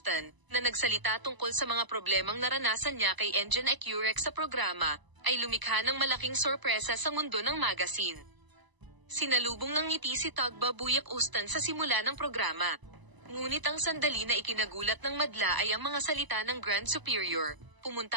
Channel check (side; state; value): left; late; 1.0 ms